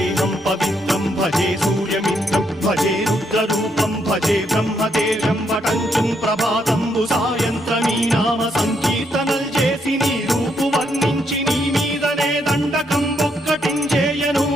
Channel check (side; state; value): both; normal; correlation 0.76